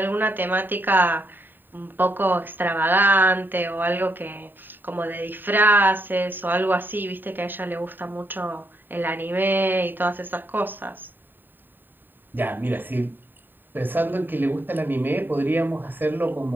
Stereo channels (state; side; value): late; left; 0.093 ms